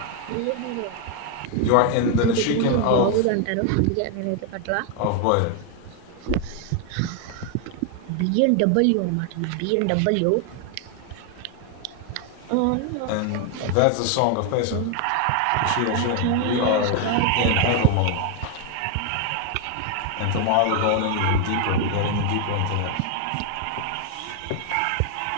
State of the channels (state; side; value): different; both; correlation 0.00